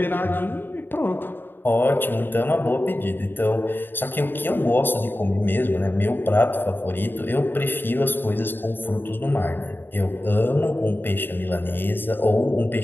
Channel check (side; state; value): right; late; 0.096 ms